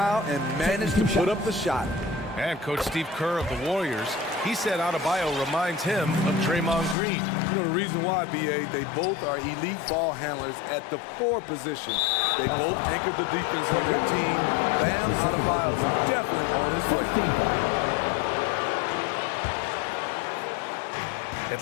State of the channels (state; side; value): drops out; right; at 7.0 s